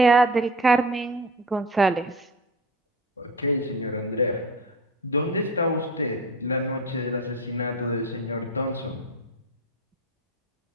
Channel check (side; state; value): both; normal; correlation 0.32